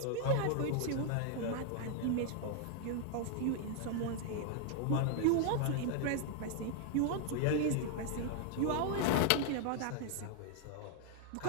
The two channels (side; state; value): both; different; correlation 0.00